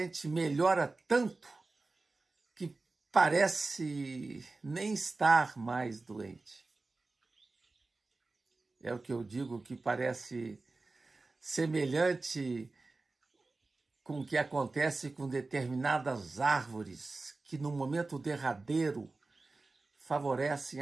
melhora tanto que parece nem estar mais doente. É o que eu digo, que parece semelhante com o que acontece com determinadas árvores que, no momento derradeiro, favorecem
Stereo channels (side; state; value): left; quieter; 3.5 dB